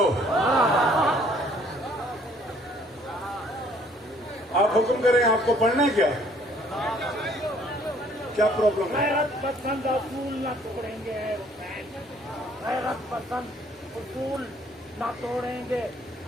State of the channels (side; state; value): both; normal; correlation 0.60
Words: आप हुक्म करें, आपको पढ़ना है क्या? क्या प्रॉब्लम है? गैरत पसंद असूल न तोड़ेंगे, गैरत पसंद उसूल न तोड़ेंगे।